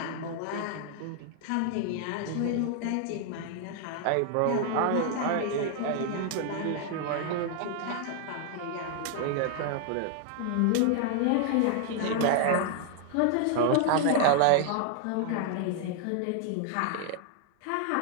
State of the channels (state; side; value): different; both; correlation 0.00